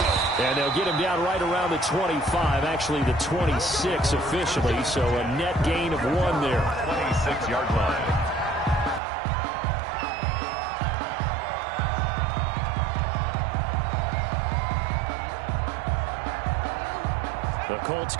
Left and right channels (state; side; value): drops out; left; at 9.0 s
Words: And they'll get him down right around the 25, actually the 26 officially, so a net gain of 1 there. 26-yard line. The Colts